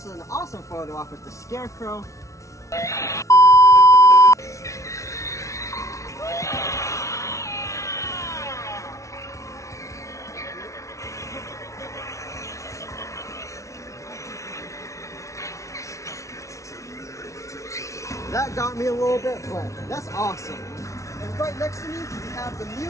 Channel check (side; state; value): right; late; 0.15 ms